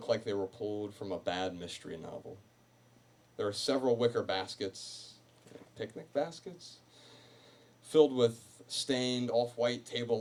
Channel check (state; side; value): identical; both; correlation 1.00